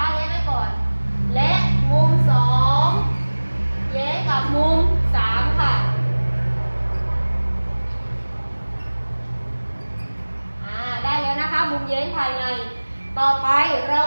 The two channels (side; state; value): both; inverted; correlation -1.00